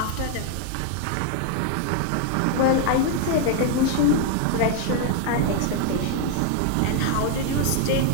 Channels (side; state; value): both; different; correlation 0.00